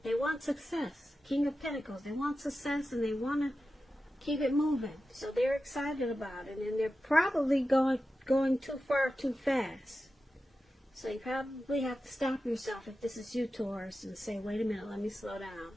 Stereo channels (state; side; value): normal; both; correlation 0.92